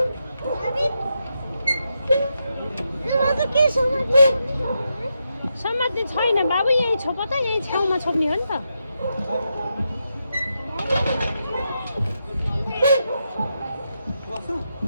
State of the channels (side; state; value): both; inverted; correlation -0.85